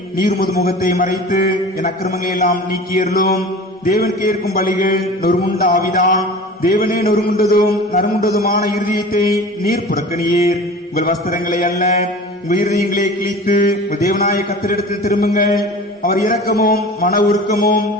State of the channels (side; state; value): both; normal; correlation 0.38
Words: நீர் முது முகத்தை மறைத்து என் அக்கிரமங்களை எல்லாம் நீக்கியருளும். தேவன் கேட்கும் பலிகள் நொறுமுண்ட ஆவிதான். தேவனே நொறுமுண்டதும் நறுமுண்டதுமான இருதயத்தை நீர் புறக்கணியீர். உங்கள் வஸ்திரங்களை அல்ல, உங்கள் இருதயங்களை கிழித்து உங்கள் தேவனாய கர்த்தரிடத்தில் திரும்புங்கள். அவர் இரக்கமும் மன உருக்கமும்